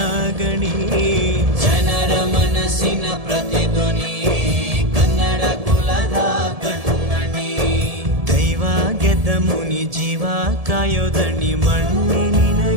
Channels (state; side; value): late; left; 1.7 ms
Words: ಗಣಿ, ಜನರ ಮನಸ್ಸಿನ ಪ್ರತಿಧ್ವನಿ, ಕನ್ನಡ ಕುಲದ ಕಣ್ಮಣಿ. ದೈವ ಗೆದ್ದ ಮುನಿ ಜೀವ ಕಾಯೋದಣಿ, ಮಣ್ಣಿ